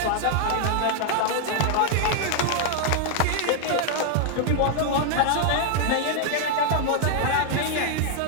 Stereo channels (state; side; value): different; both; correlation 0.00